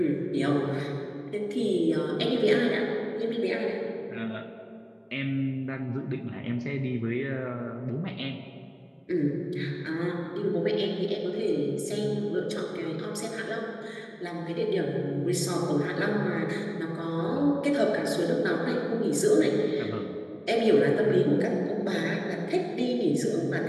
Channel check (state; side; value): identical; both; correlation 1.00